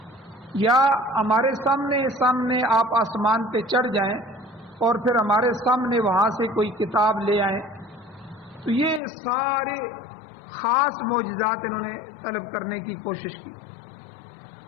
یا ہمارے سامنے آپ آسمان پہ چڑھ جائیں اور پھر ہمارے سامنے وہاں سے کوئی کتاب لے آئیں۔ تو یہ سارے خاص معجزات انہوں نے طلب کرنے کی کوشش کی،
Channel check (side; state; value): right; drops out; at 9.0 s